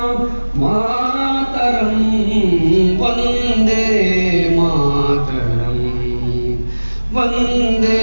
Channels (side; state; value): both; inverted; correlation -1.00